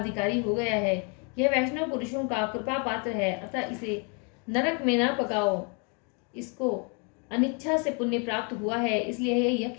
हो गया है। यह वैष्णव पुरुषों का कृपा पात्र है, अतः इसे नरक में न पकाओ। इसको अनिच्छा से पुण्य प्राप्त हुआ है, इसलिए यह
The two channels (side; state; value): right; quieter; 36.2 dB